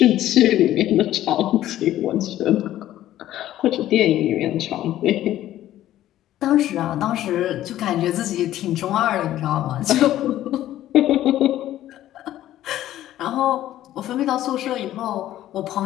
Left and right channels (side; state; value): right; quieter; 13.3 dB